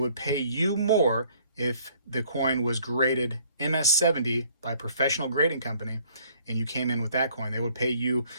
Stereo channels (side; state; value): both; inverted; correlation -0.60